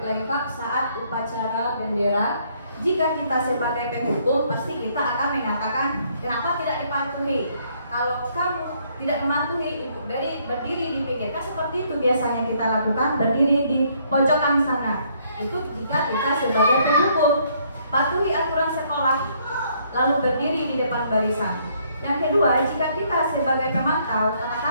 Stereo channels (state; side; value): inverted; both; correlation -0.67